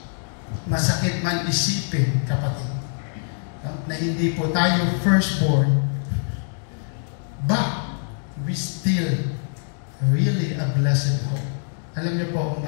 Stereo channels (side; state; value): right; silent; digital silence